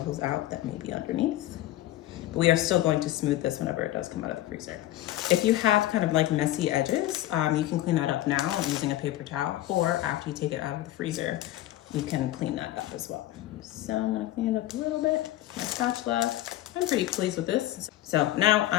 out that may be underneath. But we are still going to smooth this whenever it does come out of the freezer. If you have kind of like messy edges, you can clean that up now using a paper towel, or after you take it out of the freezer, you can clean that up as well. So I'm gonna clean it up a little bit. My spatula, I'm pretty pleased with this. So now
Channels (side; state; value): right; quieter; 14.7 dB